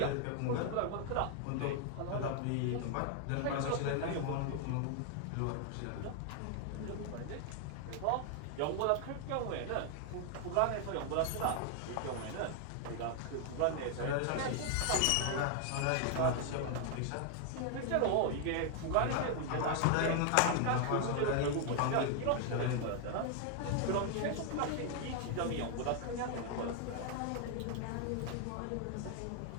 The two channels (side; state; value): both; different; correlation 0.00